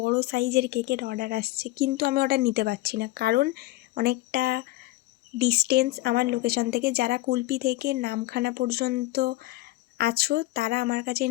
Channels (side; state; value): right; quieter; 18.5 dB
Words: সাইজের কেকের অর্ডার আসছে, কিন্তু আমি অর্ডার নিতে পারছি না, কারণ অনেকটা ডিস্টেন্স আমার লোকেশন থেকে। যারা কুলপি থেকে নামখানা পর্যন্ত আছো তারা আমার কাছে